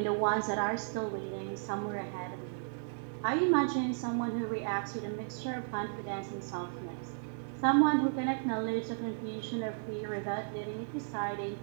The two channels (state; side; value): silent; left; digital silence